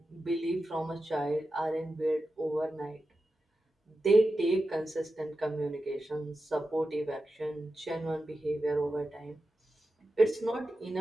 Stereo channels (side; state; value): both; normal; correlation 0.91